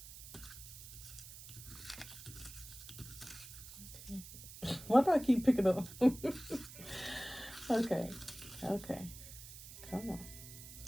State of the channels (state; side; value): noise; right; hiss, 14 dB below the sound